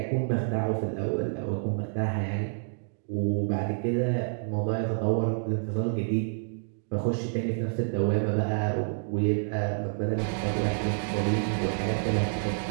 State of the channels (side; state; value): left; silent; digital silence